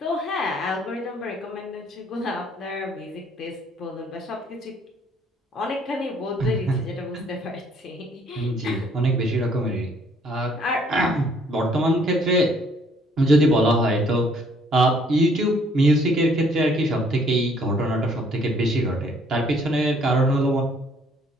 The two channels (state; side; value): normal; both; correlation 0.63